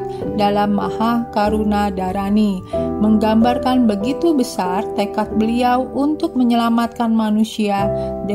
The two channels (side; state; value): both; identical; correlation 1.00